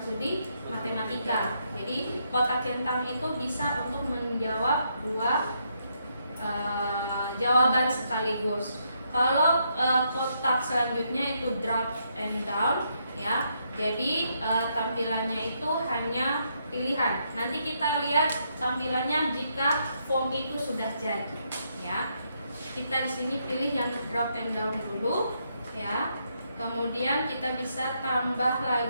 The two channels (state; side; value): inverted; both; correlation -0.77